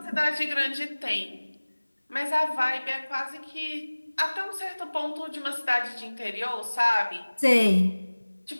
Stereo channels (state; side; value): inverted; both; correlation -1.00